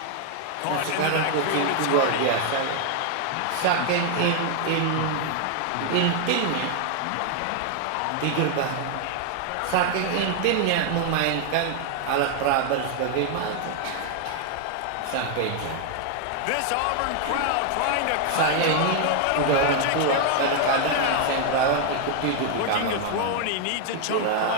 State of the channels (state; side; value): different; both; correlation 0.00